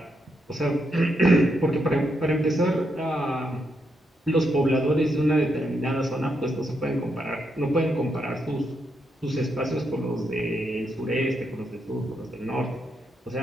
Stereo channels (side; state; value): both; normal; correlation 0.80